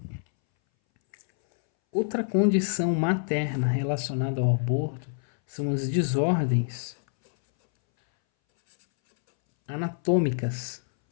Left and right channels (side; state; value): right; silent; 61 dB below the other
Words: Outra condição materna relacionada ao aborto são as desordens anatômicas